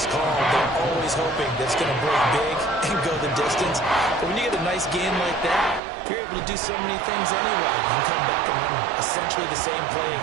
called, they're always hoping that it's going to break big and go the distance. But when you get a nice game like that, you're able to do so many things anyway. You can come back and run essentially the same play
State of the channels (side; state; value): left; drops out; at 5.8 s